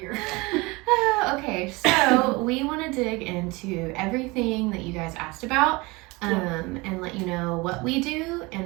year. Okay, so we want to dig into everything that you guys asked about and let you know what we do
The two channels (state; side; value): quieter; left; 24.4 dB